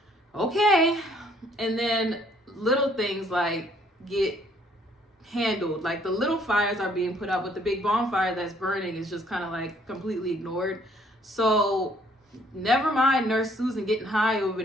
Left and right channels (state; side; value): normal; both; correlation 0.63